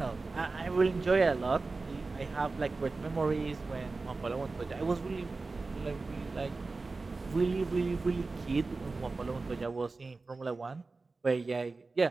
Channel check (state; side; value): quieter; left; 3.7 dB